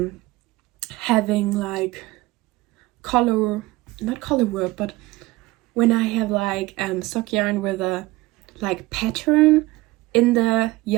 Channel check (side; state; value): left; quieter; 19.9 dB